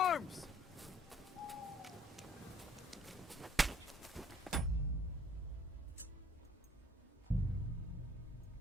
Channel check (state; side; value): normal; both; correlation 0.59